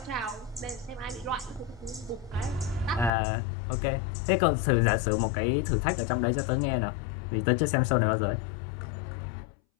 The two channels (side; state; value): right; drops out; at 3.1 s